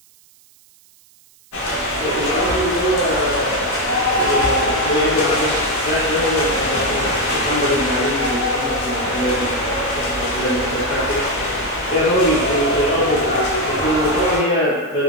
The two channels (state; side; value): noise; right; hiss, 29 dB below the sound